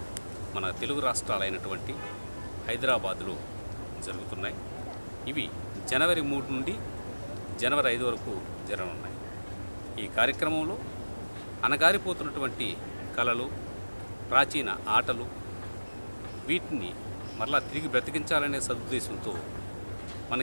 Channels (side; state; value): both; inverted; correlation -1.00